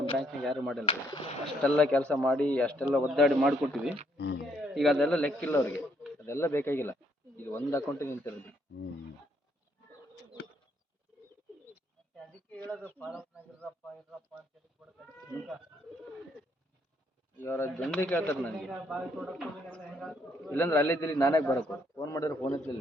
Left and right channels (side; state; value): both; normal; correlation 0.71